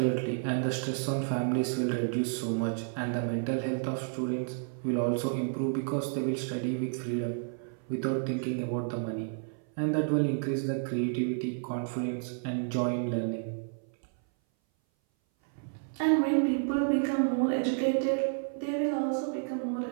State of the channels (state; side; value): silent; left; 57 dB below the other